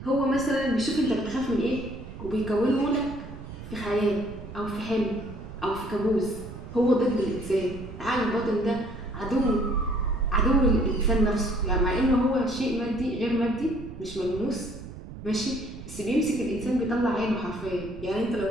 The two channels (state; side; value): noise; right; rumble, 12 dB below the sound